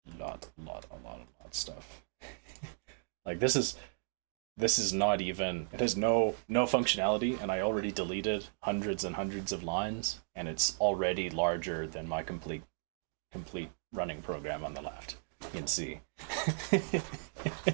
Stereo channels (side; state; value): left; silent; digital silence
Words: A lot of stuff. Like this is not even, it has no functionality, and I already deleted hundreds and hundreds of lines, and it's already larger than my complete running program on the left in C.